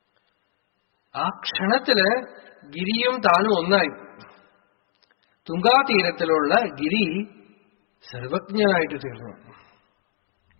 ആ ക്ഷണത്തില് ഗിരിയും താനും ഒന്നായി. തുങ്കാതീരത്തിലുള്ള ഗിരി സർവജ്ഞനായിട്ട് തീർന്നു.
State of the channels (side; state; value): right; silent; digital silence